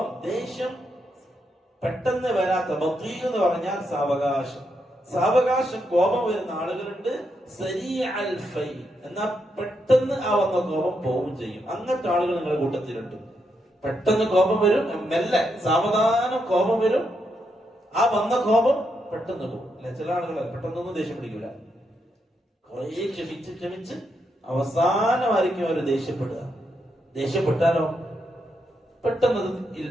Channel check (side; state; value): both; normal; correlation 0.81